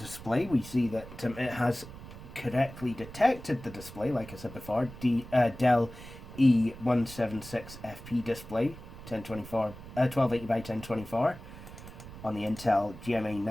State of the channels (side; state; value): right; noise; rumble, 15 dB below the sound